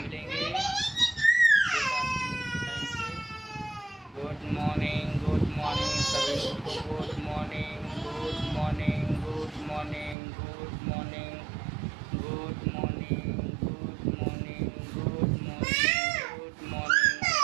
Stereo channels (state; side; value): drops out; left; at 10.2 s